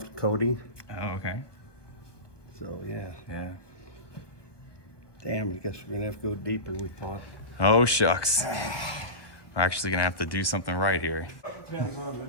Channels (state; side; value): late; right; 1.2 ms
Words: coating. Oh, okay. So yeah. Yeah. Damn, I guess we're gonna have to go deeper than we thought. Oh shucks. We're actually gonna have to do something right here. Depends on